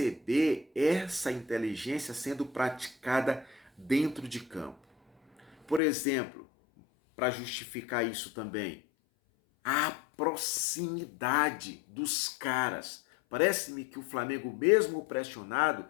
essa inteligência sendo praticada dentro de campo. Por exemplo, para justificar isso também, a proximidade dos caras. Parece-me que o Flamengo, mesmo pressionado,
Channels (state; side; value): drops out; right; at 5.8 s